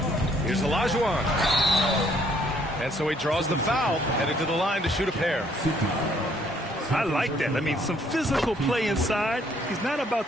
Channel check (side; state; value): both; normal; correlation 0.65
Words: Here's Olajuwon. And so he draws the foul, headed to the line to shoot a pair. I like that. I mean, some physical play inside. He's not about